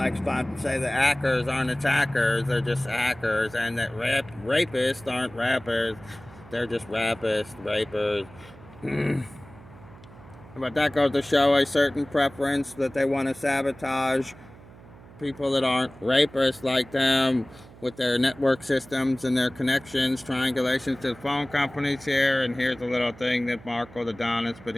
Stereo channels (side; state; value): right; noise; hum, 21 dB below the sound